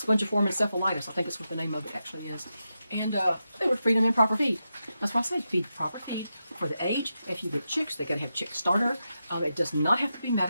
encephalitis. I think that's what the name of it actually is. And they were feeding them improper feed. That's why I said feed proper feed for the age. If you get chicks, they got to have chick starter. It does not have to be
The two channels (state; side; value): inverted; both; correlation -0.88